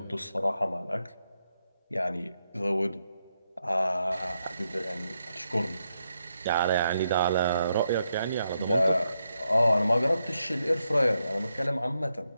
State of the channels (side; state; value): both; inverted; correlation -0.83